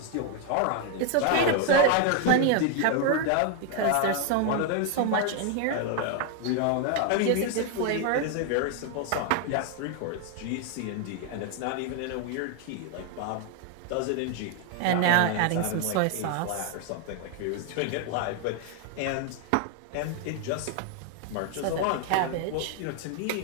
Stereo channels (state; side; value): different; both; correlation 0.01